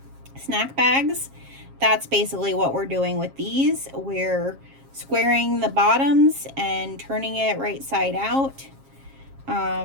snack bags, that's basically what we're doing with these. We're squaring the bottoms and turning it right side out.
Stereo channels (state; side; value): late; left; 7.4 ms